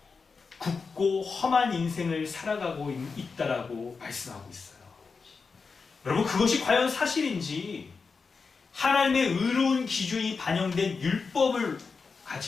굽고 험한 인생을 살아가고 있다라고 말씀하고 있어요. 여러분, 그것이 과연 사실인지 하나님의 의로운 기준이 반영된 율법을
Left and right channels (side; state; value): right; quieter; 4.9 dB